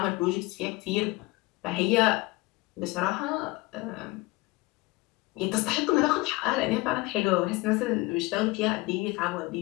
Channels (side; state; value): right; quieter; 22.4 dB